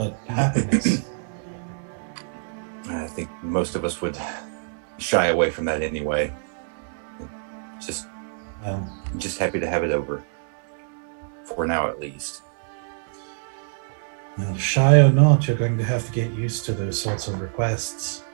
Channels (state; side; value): silent; left; digital silence